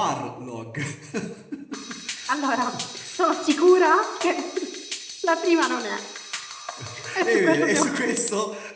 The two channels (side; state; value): both; identical; correlation 1.00